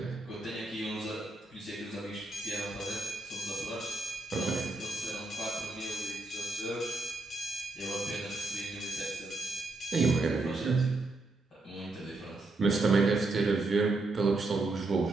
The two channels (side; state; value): left; quieter; 3.1 dB